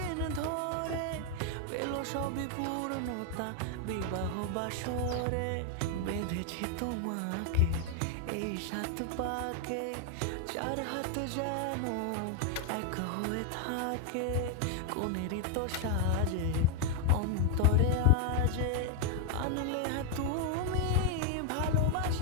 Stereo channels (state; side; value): different; both; correlation 0.01